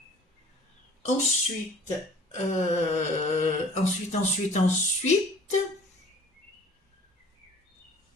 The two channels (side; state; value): both; normal; correlation 0.48